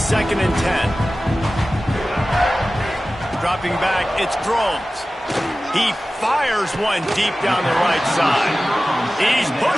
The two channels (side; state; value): both; normal; correlation 0.96